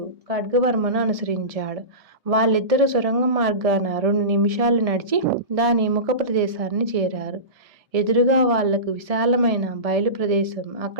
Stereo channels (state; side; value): late; left; 1.7 ms